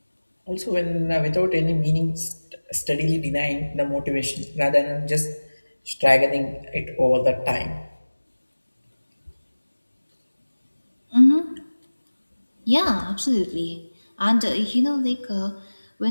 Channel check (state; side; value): inverted; both; correlation -1.00